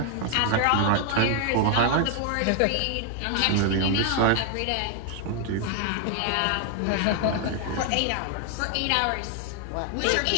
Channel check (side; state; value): both; different; correlation 0.00